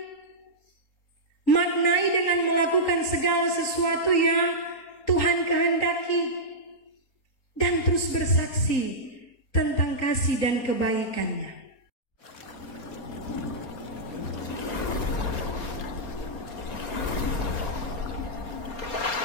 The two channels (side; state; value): right; late; 4.3 ms